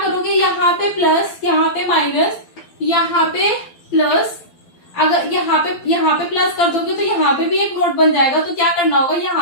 यहाँ पे प्लस, यहाँ पे माइनस, यहाँ पे प्लस, अगर यहाँ पे प्लस कर दोगे तो यहाँ पे भी एक नोट बन जाएगा। तो क्या करना होगा,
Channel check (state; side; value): late; right; 12 ms